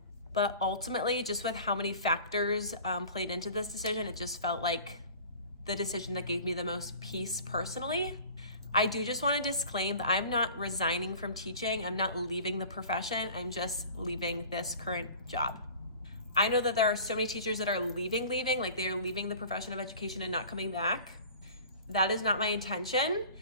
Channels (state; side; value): inverted; both; correlation -0.43